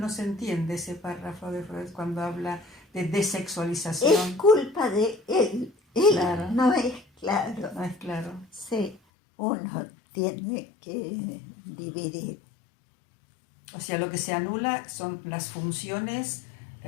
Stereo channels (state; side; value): drops out; right; at 9.0 s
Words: se entiende ese párrafo de Freud cuando habla de desexualización. Es culpa de él. Él Claro. no es claro. No es claro. Sí, uno tiene que dividir. O sea, lo que se anula son las funciones